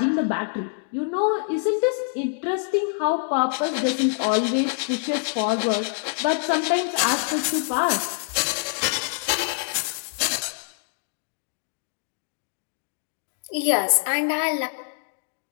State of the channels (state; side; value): silent; right; digital silence